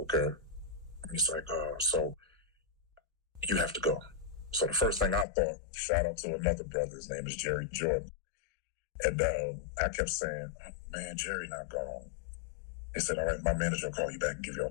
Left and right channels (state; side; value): drops out; right; at 5.2 s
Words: And he's like, so you have to go. So the first thing I thought, shout out to another brother, his name is Jerry Jordan. And I kept saying, oh, man, Jerry not gone. He said, all right, my manager will call you back and give you all